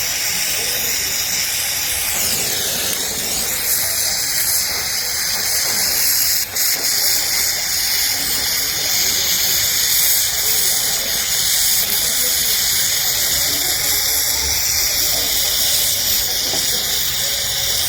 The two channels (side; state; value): both; identical; correlation 1.00